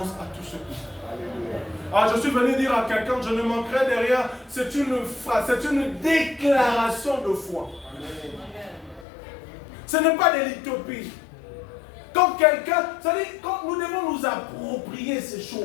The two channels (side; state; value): right; drops out; at 9.1 s